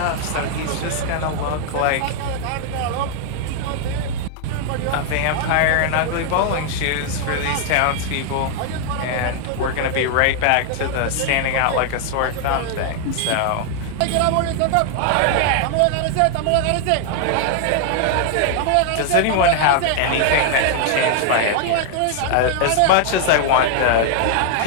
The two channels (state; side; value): different; both; correlation 0.00